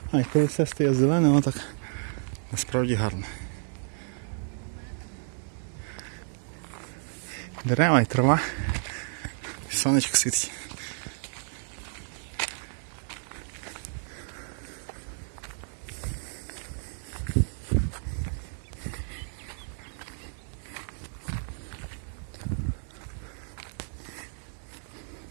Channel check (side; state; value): left; silent; 57 dB below the other